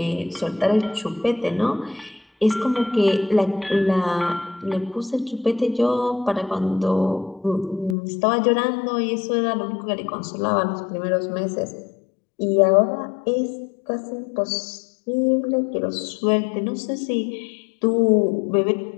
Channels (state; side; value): drops out; right; at 8.0 s